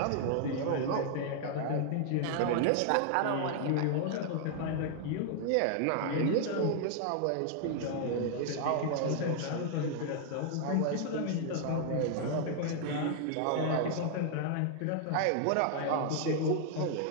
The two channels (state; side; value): different; both; correlation 0.00